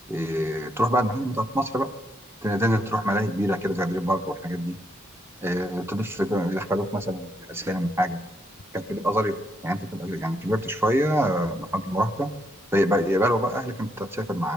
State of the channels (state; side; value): normal; both; correlation 0.76